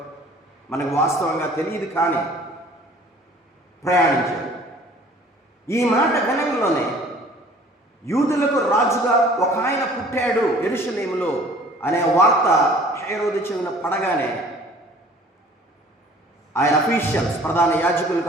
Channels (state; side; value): normal; both; correlation 0.51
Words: మనకు వాస్తవంగా తెలియదు, కానీ ప్రయాణించారు. ఈ మాట గణంలోనే యూదులకు రాజుగా ఒక ఆయన పుట్టాడు యెరూషలేములో అనే వార్త హేరోదు చెవిన పడగానే ఆయన అఫీషియల్స్, ప్రధాన యాజకులు